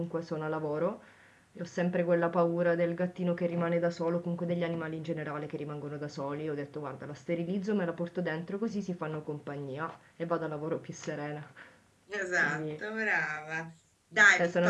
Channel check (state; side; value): identical; both; correlation 1.00